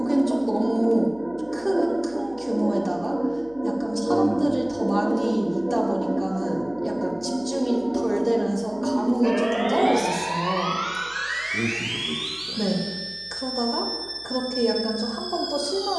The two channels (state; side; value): noise; right; hum, 25 dB below the sound